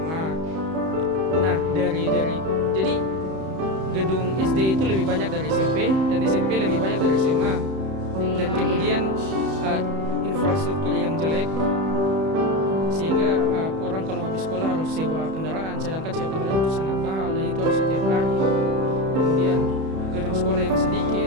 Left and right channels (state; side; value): late; left; 31 ms